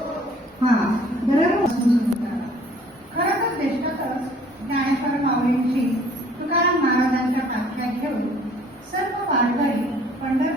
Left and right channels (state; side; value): normal; both; correlation 0.56